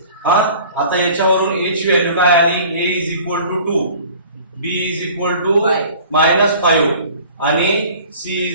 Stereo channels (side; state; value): both; inverted; correlation -0.47